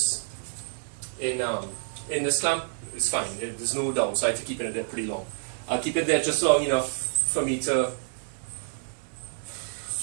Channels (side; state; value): left; silent; digital silence